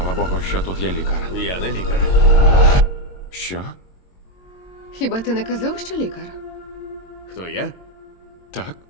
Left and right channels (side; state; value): right; late; 22 ms